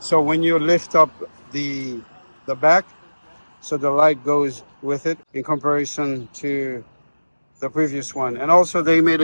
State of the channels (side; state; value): both; inverted; correlation -1.00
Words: when you lift up the back, so the light goes with it in comparison to the previous one. And also they made